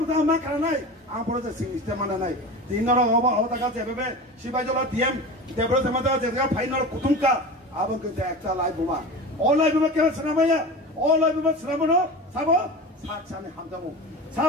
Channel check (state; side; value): normal; both; correlation 0.31